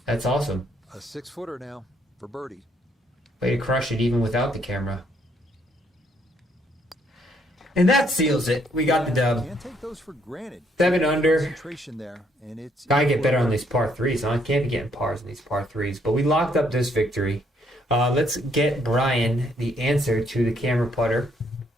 That's awesome. a 6-footer now for birdie. Way to crush it even without the camera. And that seals it. We got the dub. Can't take those for granted. 7 under. Concentration there, and it's Gotta get better on these par 3s. Huh? I can't be getting pars in these par 3s. But we locked up this victory. Let's get Brian the answer to the camera putter.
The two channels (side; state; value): both; normal; correlation 0.70